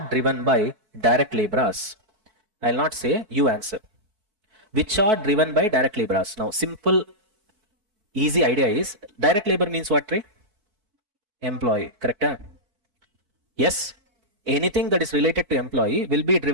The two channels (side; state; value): left; late; 4.6 ms